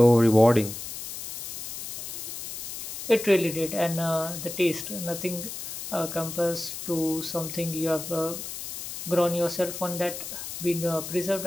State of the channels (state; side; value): noise; left; hiss, 8 dB below the sound